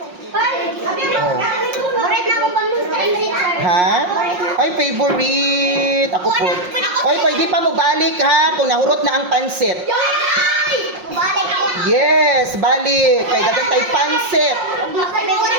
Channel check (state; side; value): late; left; 5.6 ms